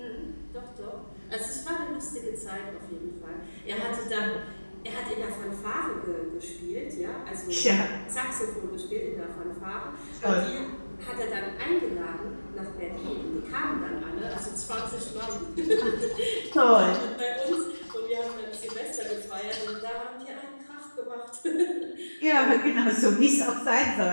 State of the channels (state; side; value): inverted; both; correlation -1.00